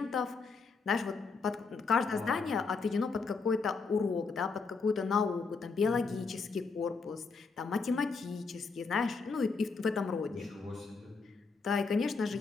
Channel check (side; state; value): right; quieter; 4.6 dB